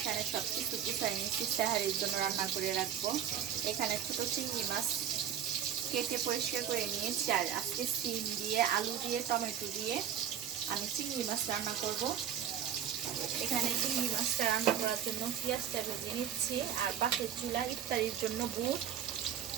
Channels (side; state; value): left; quieter; 9.5 dB